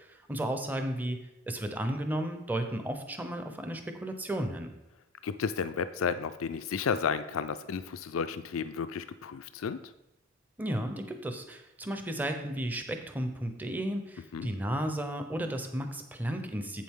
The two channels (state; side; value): normal; both; correlation 0.49